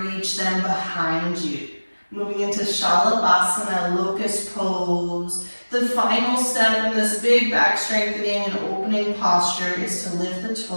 them behind you. Moving into Shalabhasana, locust pose. The final step in this big back strengthening and opening posture is to lift the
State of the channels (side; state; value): both; inverted; correlation -1.00